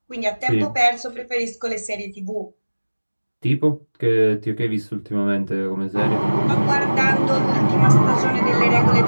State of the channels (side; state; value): both; inverted; correlation -1.00